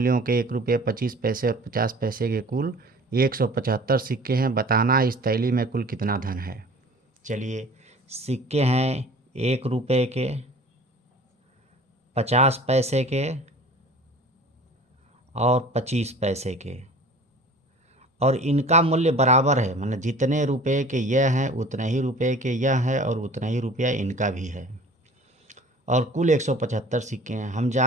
के 1 रुपये 25 पैसे और 50 पैसे के कुल 175 सिक्के हैं। बताना इस थैली में कुल कितना धन है। चलिए, सिक्के हैं 1 रुपये के, 50 पैसे के और 25 पैसे के, और इनका मूल्य बराबर है, मतलब जितने रुपए के यह हैं उतने ही रुपए के यह है और उतना ही रुपया इनका भी है, और कुल 175 सिक्के हैं। हम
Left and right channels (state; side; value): normal; both; correlation 0.45